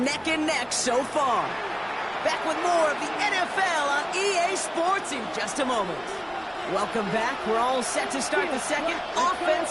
and neck so far. Back with more of the NFL on EA Sports in just a moment. Welcome back. We're all set to start the second.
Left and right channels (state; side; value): identical; both; correlation 1.00